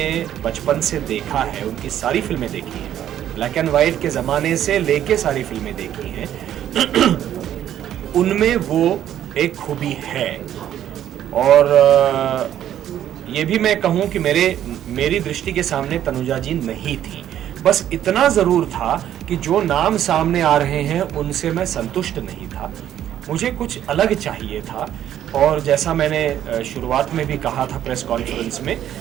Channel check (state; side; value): quieter; left; 11.1 dB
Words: बचपन से देखा है, उनकी सारी फिल्में देखी हैं, ब्लैक एंड वाइट के ज़माने से लेके सारी फिल्में देखी हैं, उनमें वो एक खूबी है। और ये भी मैं कहूँ कि मेरी दृष्टि के सामने तनुजा जी नहीं थी। बस इतना ज़रूर था कि जो नाम सामने आ रहे हैं उनसे मैं संतुष्ट नहीं था, मुझे कुछ अलग चाहिए था। और जैसा मैंने शुरुआत में भी कहा था प्रेस कॉन्फ्रेंस में